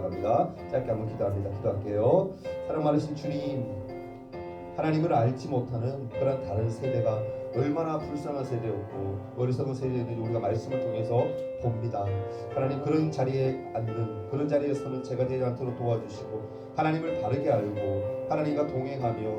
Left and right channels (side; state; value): both; identical; correlation 1.00